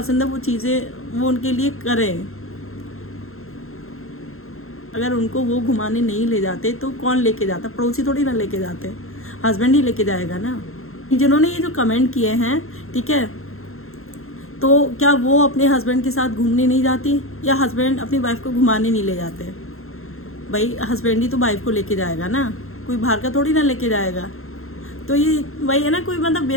है वो चीज़ें वो उनके लिए करें। अगर उनको वो घुमाने नहीं ले जाते तो कौन लेके जाता, पड़ोसी थोड़ी ना लेके जाते, हस्बैंड ही लेके जाएगा ना। जिन्होंने ये जो कमेंट किए हैं, ठीक है, तो क्या वो अपने हस्बैंड के साथ घूमने नहीं जाती या हस्बैंड अपनी वाइफ को घुमाने नहीं ले जाते? भाई हस्बैंड ही तो वाइफ को लेके जाएगा ना, कोई बाहर का थोड़ी ना लेके जाएगा। तो ये वही है ना, कोई मतलब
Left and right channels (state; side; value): late; right; 0.62 ms